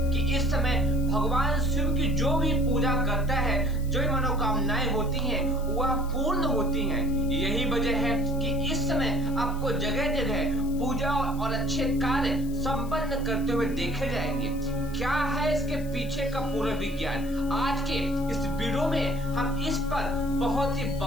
कि इस समय भगवान शिव की जो भी पूजा करता है, जो मनोकामनाएं होती हैं, वह पूर्ण होती हैं। यही वजह है कि इस समय आपको जगह जगह पूजा और अच्छे कार्य संपन्न करते हुए देखे जाएंगे। क्या है इसके पीछे का पूरा विज्ञान? आज के इस वीडियो में हम इस पर बहुत ही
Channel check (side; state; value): left; noise; hiss, 21 dB below the sound